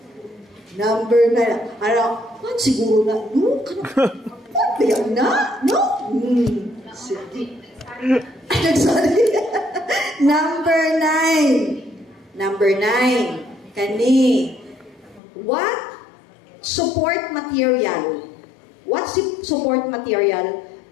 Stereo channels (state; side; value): drops out; right; at 15.2 s